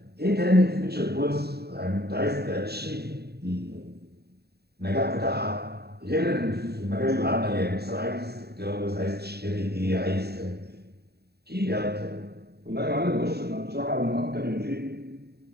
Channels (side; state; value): left; late; 0.47 ms